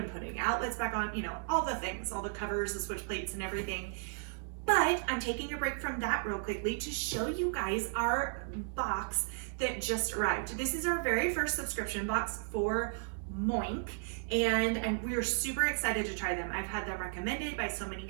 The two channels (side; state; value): left; silent; digital silence